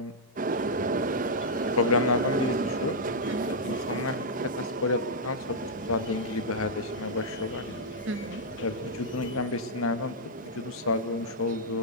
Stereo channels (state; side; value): normal; both; correlation -0.06